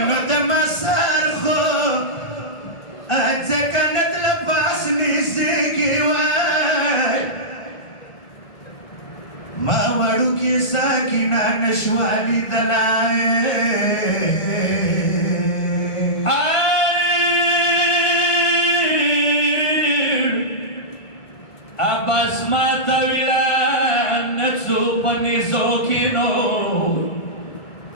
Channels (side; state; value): right; late; 1.5 ms